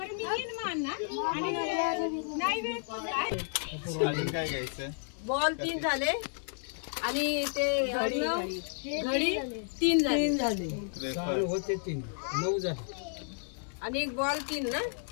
अजून काय घ्यायचं? बॉल 3 झाले आणि ते घडी 3 झाले. होते 3 9 झाले. आणि एक बॉल 3 ना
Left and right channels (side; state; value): right; silent; digital silence